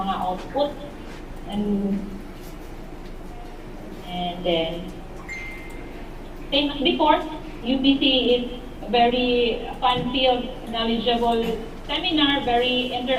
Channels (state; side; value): identical; both; correlation 1.00